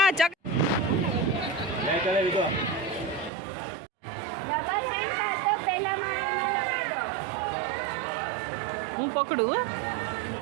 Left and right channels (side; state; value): left; drops out; at 3.3 s